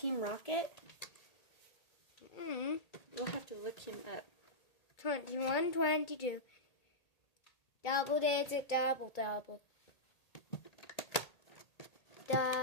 Rocket? We'll have to look him up. 21, 22. Double digit, double.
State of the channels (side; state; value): right; late; 1.8 ms